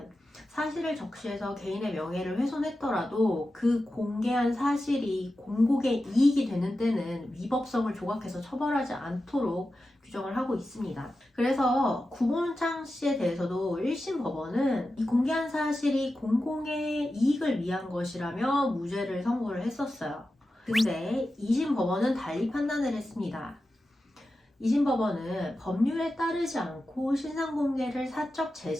사실을 적시해서 개인의 명예를 훼손했더라도 그 공개한 사실이 공공의 이익이 되는 때는 위법성을 조각해서 처벌하지 않도록 규정을 하고 있습니다. 그래서 구본창 씨에 대해서도 1심 법원은 이 공개한 사실이 공공의 이익을 위한 것이라며 무죄를 선고를 했었어요. 근데 2심 법원은 달리 판단을 했습니다. 2심 법원은 법률에 따르지 않고 신상 공개를 사적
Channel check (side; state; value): both; normal; correlation 0.92